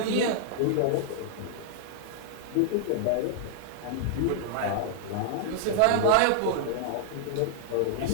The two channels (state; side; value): different; both; correlation 0.00